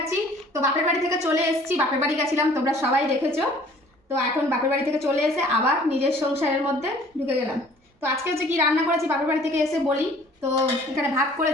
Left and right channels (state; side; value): normal; both; correlation 0.53